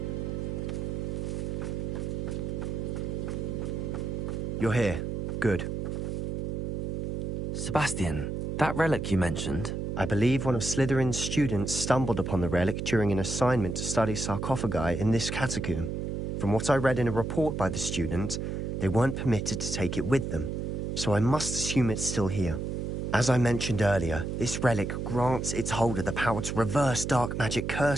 You're here. Good. Sebastian, that relic you mentioned... I believe one of Slytherin's students stumbled upon the relic during an assignment to study sarcophagi in this catacomb. From what I read in a report by the student, they weren't permitted to take it with them, so I must assume it's still here. As I mentioned earlier, this relic grants its holder the power to reverse dark magic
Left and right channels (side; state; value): right; noise; hum, 3 dB below the sound